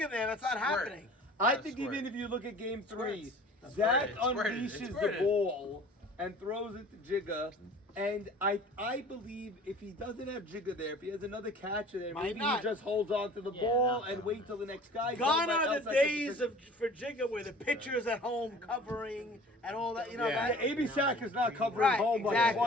there. That's not happening. I think even if you look at game 3, Zach unleashes the ball and throws it to Jigga. And I believe if he doesn't have Jigga there, if he has another catcher there, Might maybe not. he just holds on to the ball and wait till the next guy. Gone Somebody are else the has to days for Jigga where the pitcher's at home covering and all that. You know Yeah. that. AB Sack is not covering Right, home, but exactly,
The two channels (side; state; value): both; normal; correlation 0.46